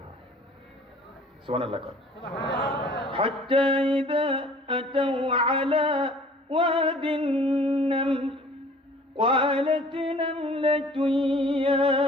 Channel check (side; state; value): both; normal; correlation 0.51